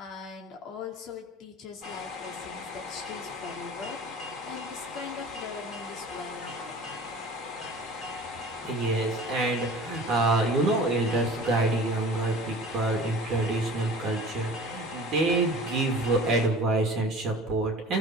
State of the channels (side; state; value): both; normal; correlation 0.42